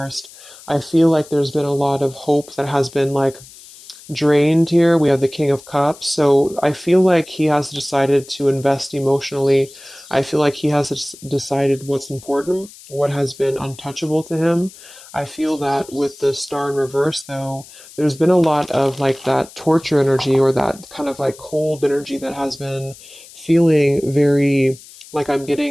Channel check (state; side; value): noise; left; hiss, 20 dB below the sound